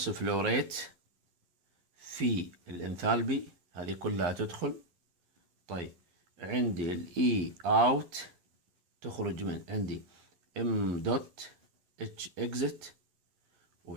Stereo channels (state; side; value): late; left; 11 ms